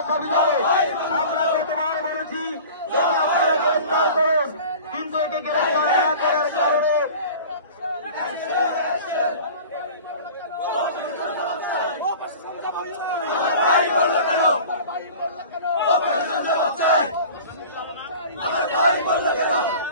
হবে। আমরা গতবার বলেছি গ্রেফতার করুন, কিন্তু একে গ্রেফতার না করার কারণে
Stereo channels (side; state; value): both; inverted; correlation -0.40